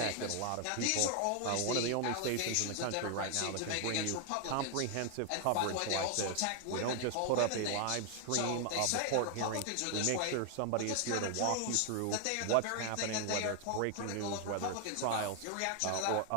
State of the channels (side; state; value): both; different; correlation 0.00